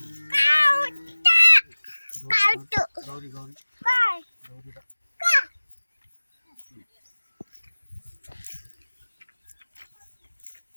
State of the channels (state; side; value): inverted; both; correlation -1.00